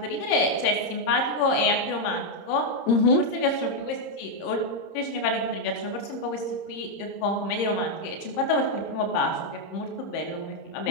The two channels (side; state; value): right; late; 30 ms